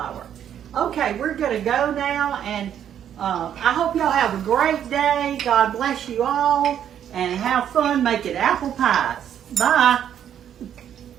Okay, we're going to go now, and I hope y'all have a great day. God bless you all, and have fun making apple pies. Bye.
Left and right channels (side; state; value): left; quieter; 9.7 dB